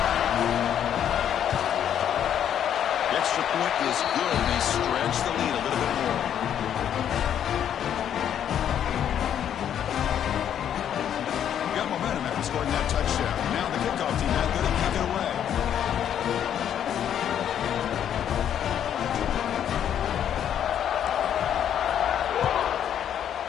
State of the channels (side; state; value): right; quieter; 9.6 dB